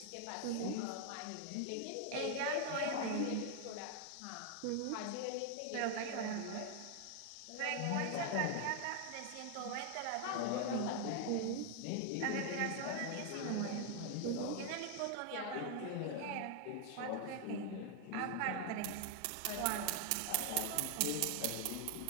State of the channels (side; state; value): both; different; correlation 0.00